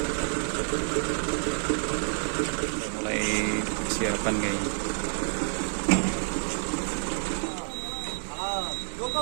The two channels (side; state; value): left; silent; digital silence